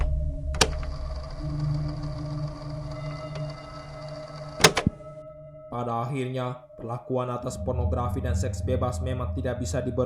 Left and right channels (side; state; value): both; identical; correlation 1.00